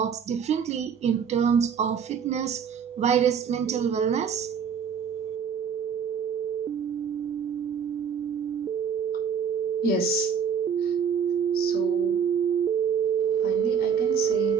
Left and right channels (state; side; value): quieter; left; 7.0 dB